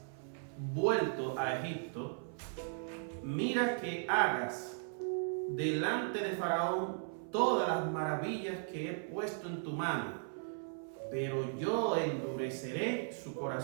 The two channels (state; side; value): silent; left; 53 dB below the other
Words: vuelto a Egipto, mira que hagas delante de Faraón todas las maravillas que he puesto en tu mano, pero yo endureceré su